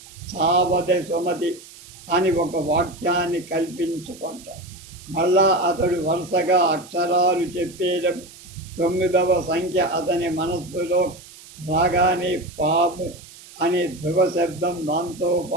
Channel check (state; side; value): noise; right; hiss, 20 dB below the sound